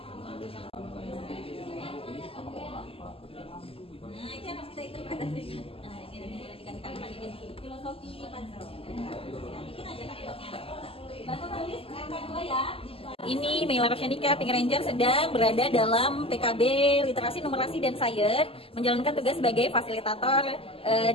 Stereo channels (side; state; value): right; late; 0.27 ms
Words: Ini Mela Rosyanika, Pink Ranger, sedang berada dalam PKB Literasi, Numerasi, dan Sains, menjalankan tugas sebagai fasilitator